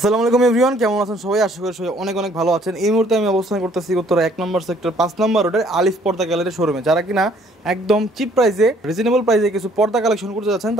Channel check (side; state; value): both; normal; correlation 0.61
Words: আলাইকুম এভরিওয়ান, কেমন আছেন সবাই? আশা করি সবাই অনেক অনেক ভালো আছেন। এই মুহূর্তে আমি অবস্থান করতেছি উত্তরা 1 নম্বর সেক্টর 5 নম্বর রোডের আলিফ পর্দা গ্যালারির শোরুমে। যারা কিনা একদম চিপ প্রাইসে, রিজনেবল প্রাইসে কিছু পর্দা কালেকশন করতে যাচ্ছেন,